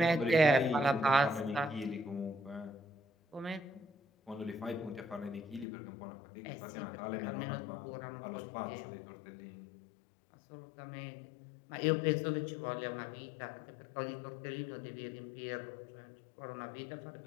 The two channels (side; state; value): right; drops out; at 5.7 s